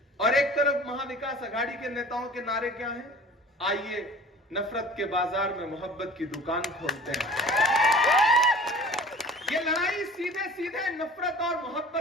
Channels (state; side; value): normal; both; correlation 0.44